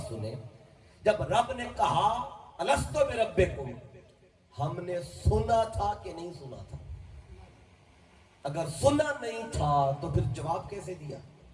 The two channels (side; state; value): both; identical; correlation 1.00